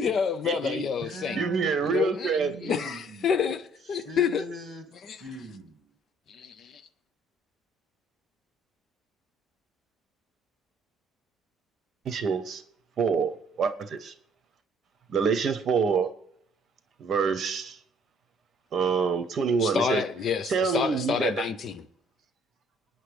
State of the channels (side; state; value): both; normal; correlation 0.60